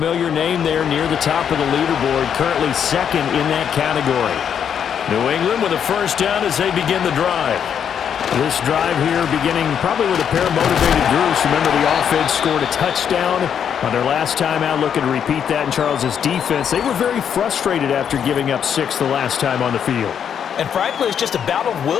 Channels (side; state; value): right; quieter; 8.2 dB